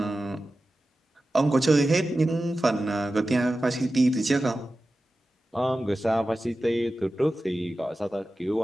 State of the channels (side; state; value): both; normal; correlation 0.94